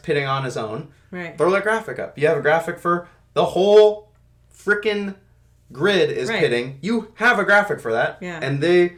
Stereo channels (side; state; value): both; identical; correlation 1.00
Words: on his own. Right. Throw that graphic up. You have a graphic for the whole frickin' grid is pitting. You have a graphic for that. Yeah. And they